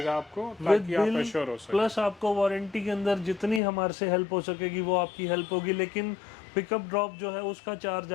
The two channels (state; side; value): drops out; right; at 3.6 s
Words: आपको, विद ताकि आप बिल, एश्योर हो सके। प्लस आपको वारंटी के अंदर जितनी हमारे से हेल्प हो सकेगी वो आपकी हेल्प होगी, लेकिन पिकअप ड्रॉप जो है उसका चार्ज